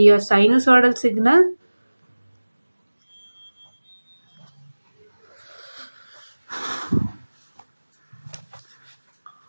a sinusoidal signal.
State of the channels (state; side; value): inverted; both; correlation -1.00